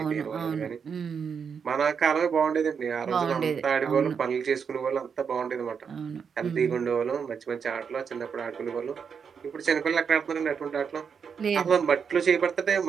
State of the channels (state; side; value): quieter; left; 6.5 dB